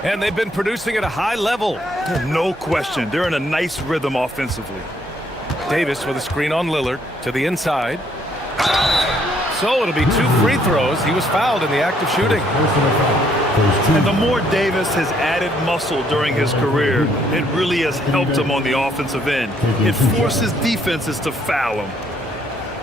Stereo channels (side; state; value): both; normal; correlation 0.68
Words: And they've been producing at a high level. No question. They're in a nice rhythm offensively. Davis with a screen on Lillard to the inside. So it'll be 2 free throws. He was fouled in the act of shooting. And the more Davis has added muscle during his career, it really has helped him on the offensive end. It forces defenses to foul him.